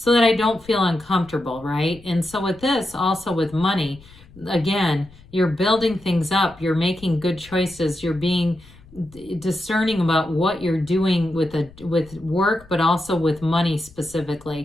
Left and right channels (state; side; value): noise; left; rumble, 23 dB below the sound